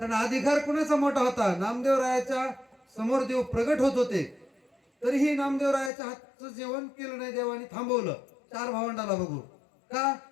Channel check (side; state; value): right; drops out; at 5.9 s